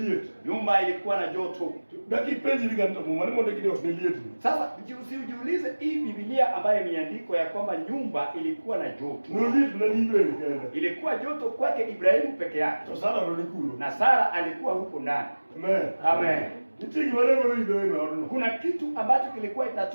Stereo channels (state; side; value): inverted; both; correlation -1.00